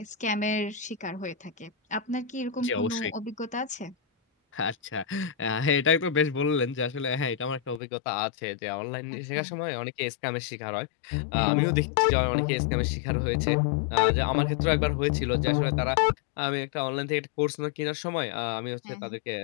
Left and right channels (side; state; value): right; drops out; at 7.8 s